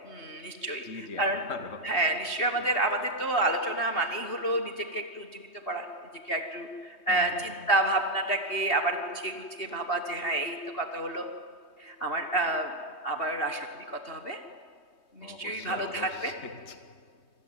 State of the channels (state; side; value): late; right; 3.2 ms